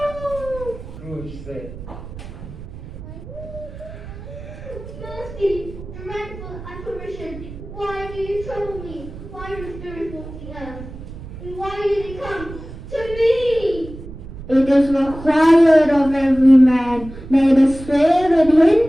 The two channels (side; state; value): right; noise; rumble, 13 dB below the sound